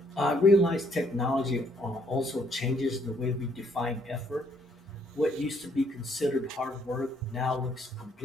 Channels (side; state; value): both; normal; correlation 0.68